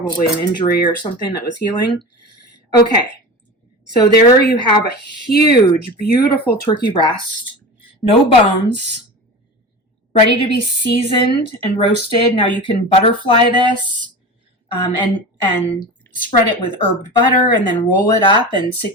an injury or something that was healing. Okay, so there you have a huge, beautiful turkey breast. No bones, ready to be seasoned and roasted. Now you can butterfly this and spread it with herbed butter and then roll it up and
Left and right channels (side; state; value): both; normal; correlation 0.30